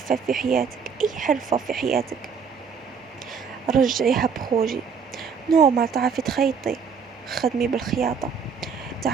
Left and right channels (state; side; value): quieter; left; 6.1 dB